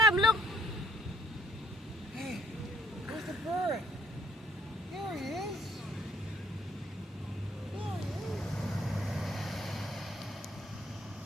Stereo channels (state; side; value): normal; both; correlation 0.65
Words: look. Where's the bird? There he is.